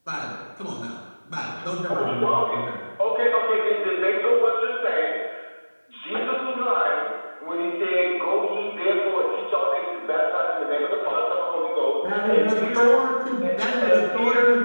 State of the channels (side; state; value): both; inverted; correlation -1.00